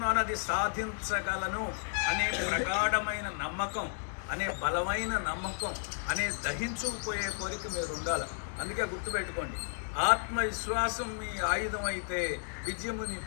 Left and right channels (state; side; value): silent; right; digital silence